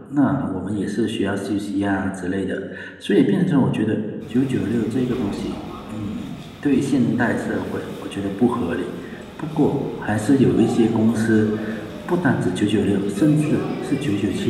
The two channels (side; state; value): both; identical; correlation 1.00